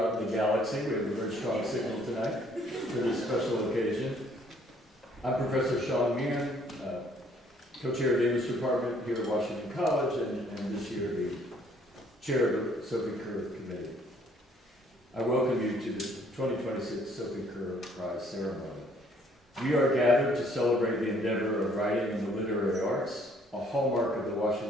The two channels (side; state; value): both; normal; correlation 0.63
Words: the galaxy. We have a very strong signal tonight for this special occasion. I'm Professor Sean Meehan, co-chair of the English department here at Washington College, and this year the chair of the Sophie Kerr Committee. I welcome you to the 2026 Sophie Kerr Prize ceremony. We are gathered to celebrate the endeavor of writing in the literary arts, a hallmark of the